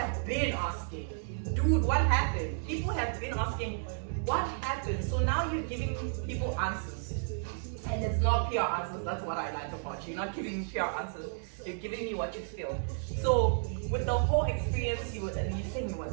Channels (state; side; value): silent; left; digital silence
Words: been asking, dude, what happened? People have been asking, what happened? So now you're giving people answers. And it's not pure answers, that's what I like about you. You're not giving me pure answers, you're giving me what you feel. So with the whole experience, you saying it